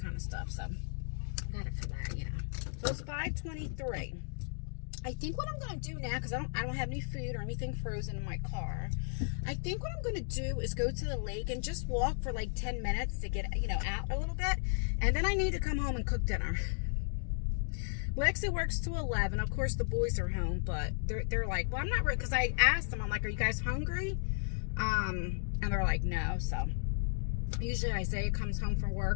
of stuff. So I got it for that, you know. So it's $5.23. I think what I'm going to do now, because I don't have any food or anything frozen in my car, I think what I'm going to do is go to the lake and just walk for like 10 minutes to get, you know, out a little bit. And then I need to come home and cook dinner. Lexi works to 11. Of course, the boys are home, but they're like, well, I'm not ready, because I asked them, I'm like, are you guys hungry? And they're like, no. So usually Isaiah comes home from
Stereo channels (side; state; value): right; silent; digital silence